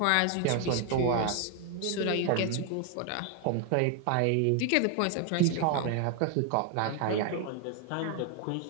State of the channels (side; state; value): both; different; correlation 0.01